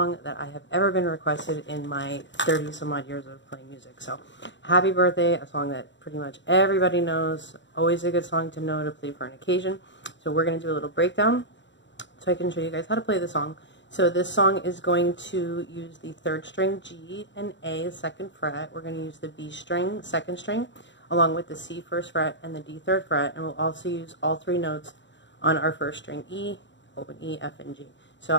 that I have ever been requested in my 30 some odd years of playing music. So happy birthday, a song that pretty much everybody knows, always a good song to know to play for an occasion. So we're going to do a little breakdown so I can show you guys how to play the song. So this song is going to use the 3rd string G and A 2nd fret. We're going to use the B string 2nd string along with the C 1st fret and the D 3rd fret, and we'll also use all 3 notes on our 1st string E, open E, F, and G. So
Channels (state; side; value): late; right; 0.53 ms